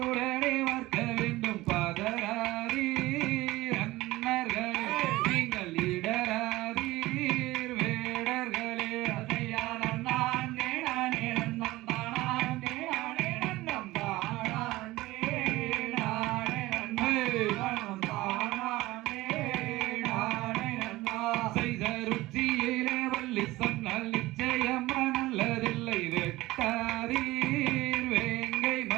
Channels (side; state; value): left; quieter; 18.6 dB